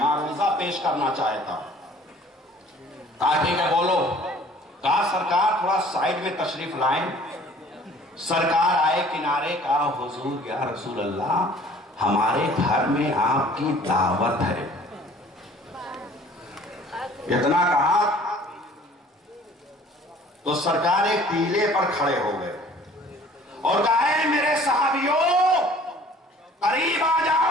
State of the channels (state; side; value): normal; both; correlation 0.52